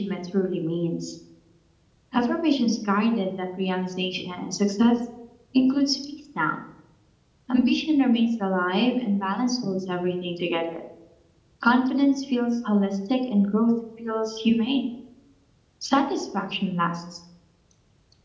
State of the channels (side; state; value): both; identical; correlation 1.00